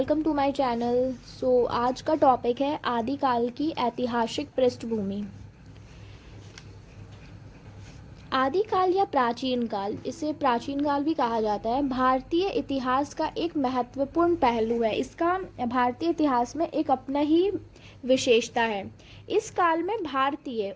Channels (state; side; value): identical; both; correlation 1.00